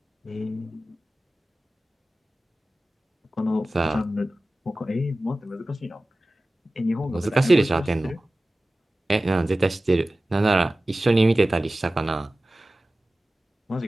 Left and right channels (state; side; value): normal; both; correlation 0.96